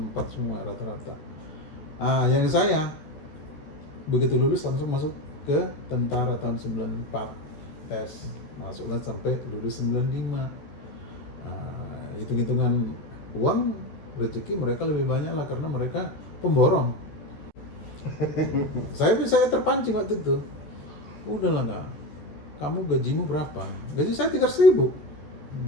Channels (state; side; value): late; right; 14 ms